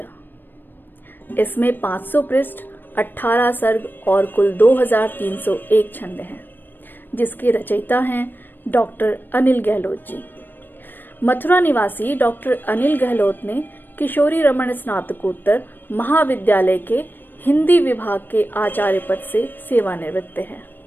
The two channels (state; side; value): late; right; 0.093 ms